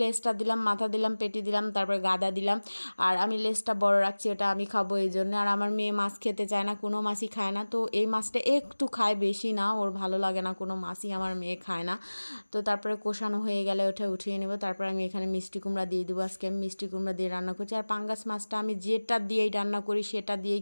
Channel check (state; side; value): inverted; both; correlation -1.00